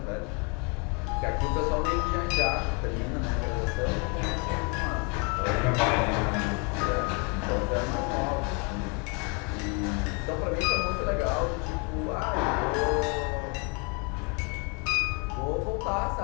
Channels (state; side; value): quieter; right; 33.3 dB